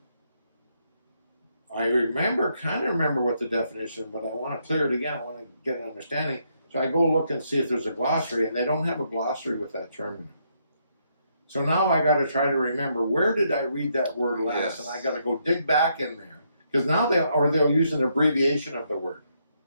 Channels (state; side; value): inverted; both; correlation -0.76